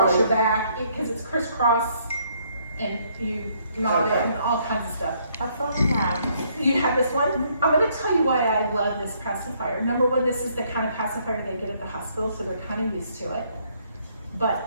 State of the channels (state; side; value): inverted; both; correlation -0.68